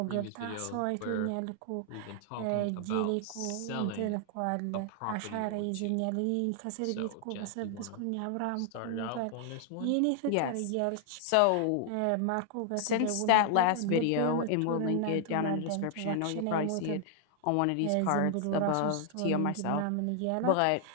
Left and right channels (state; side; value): different; both; correlation 0.00